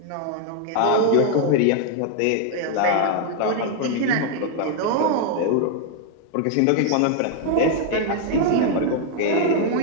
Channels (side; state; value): both; different; correlation 0.00